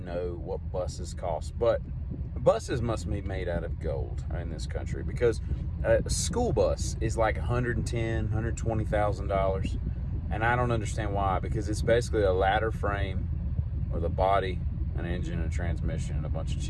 what buses cost, but buses must be made out of gold in this country because a school bus is like $110,000, $120,000. And I don't understand why, because it's basically a ladder frame with a body, an engine, a transmission, and a bunch of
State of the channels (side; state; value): both; identical; correlation 1.00